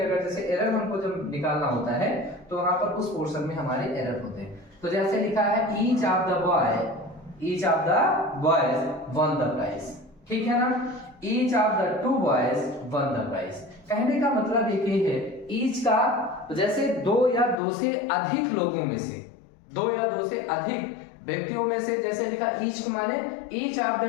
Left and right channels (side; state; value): right; drops out; at 17.6 s